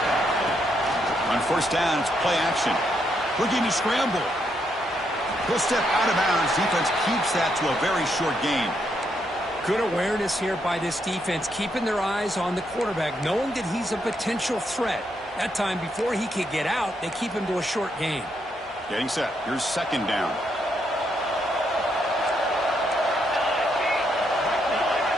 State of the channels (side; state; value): both; normal; correlation 0.77